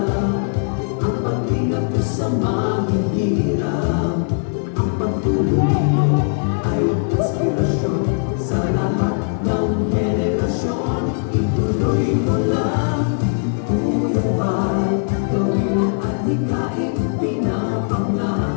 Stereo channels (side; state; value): right; silent; digital silence